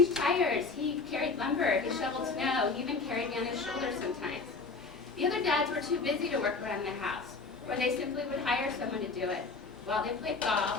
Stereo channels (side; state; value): right; quieter; 4.2 dB